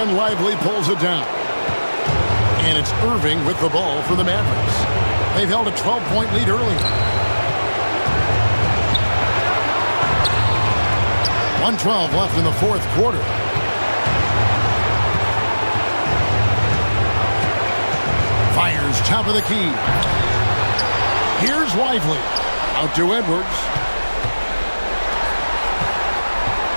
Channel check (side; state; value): both; inverted; correlation -1.00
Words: Lively pulls it down. And it's Irving with the ball for the Mavericks. They've held a 12-point lead earlier. 1:12 left in the fourth quarter. Fires top of the key. Here's Lively. Out to Edwards.